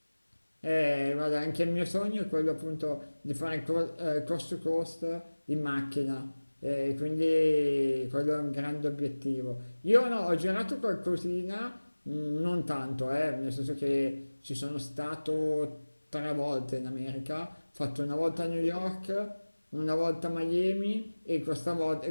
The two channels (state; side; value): inverted; both; correlation -1.00